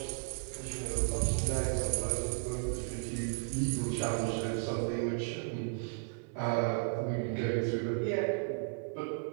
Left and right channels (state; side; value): silent; left; 55 dB below the other